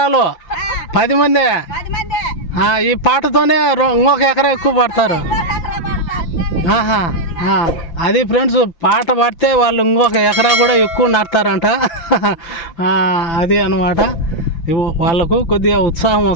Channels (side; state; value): right; late; 5.9 ms